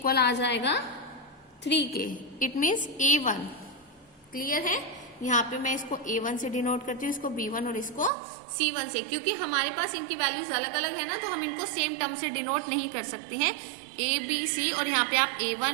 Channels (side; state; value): left; drops out; at 8.1 s